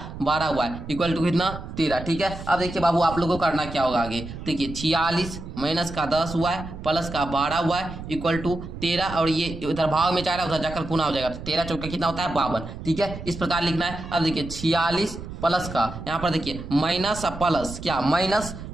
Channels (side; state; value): right; noise; rumble, 10 dB below the sound